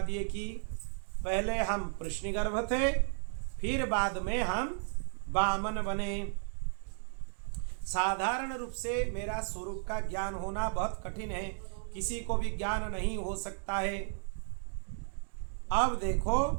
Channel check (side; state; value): left; silent; 55 dB below the other